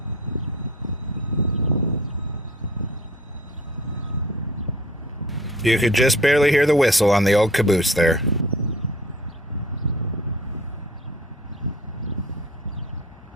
You could just barely hear the whistle on the old caboose there.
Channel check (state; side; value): normal; both; correlation 0.47